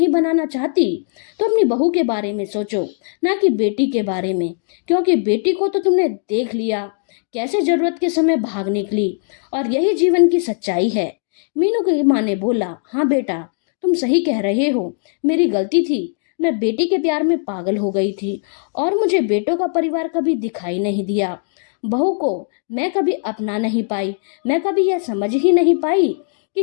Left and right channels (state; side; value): silent; right; 66 dB below the other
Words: बनाना चाहती तो अपनी बहू के बारे में सोचो, ना कि बेटी के बारे में, क्योंकि बेटी को तो तुमने देख लिया कैसे जरूरत के समय भाग निकली, और यही जीवन की सच्चाई है। मीनू की माँ ने बोला, हाँ बेटा, तुम सही कह रहे हो, मेरी गलती थी। मैं बेटी के प्यार में पागल हो गई थी और मुझे बेटों का परिवार कभी दिखाई नहीं दिया। बहू को मैं कभी अपना नहीं पाई। मैं कभी यह समझ ही नहीं पाई